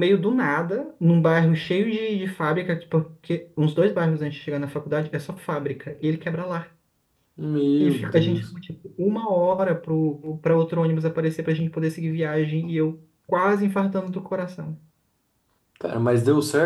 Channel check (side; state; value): both; identical; correlation 1.00